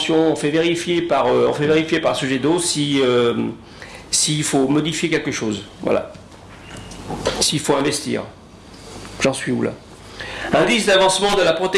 on fait vérifier par Sogedo s'il faut modifier quelque chose. Voilà. S'il faut investir. J'en suis où là? Indice d'avancement de la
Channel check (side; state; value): both; identical; correlation 1.00